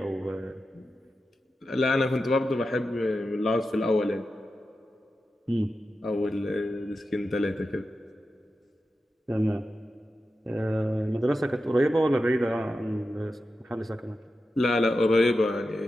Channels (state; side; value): normal; both; correlation 0.91